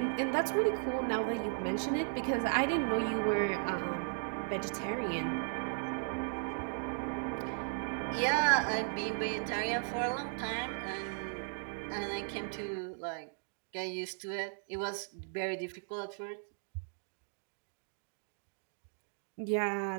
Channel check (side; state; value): left; silent; digital silence